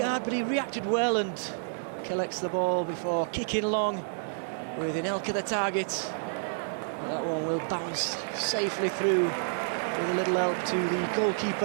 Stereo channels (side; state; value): left; silent; digital silence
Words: but he reacted well and collects the ball before kicking long with Anelka the target. But that one will bounce safely through with a little help to the